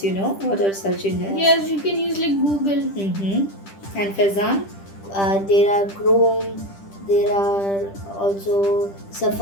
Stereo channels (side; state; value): right; late; 10 ms